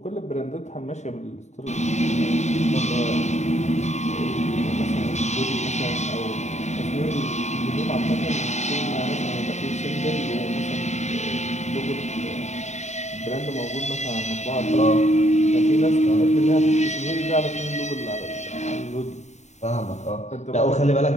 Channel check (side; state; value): right; late; 0.33 ms